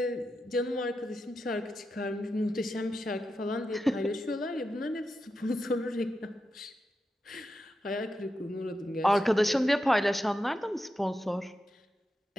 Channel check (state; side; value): normal; both; correlation 0.88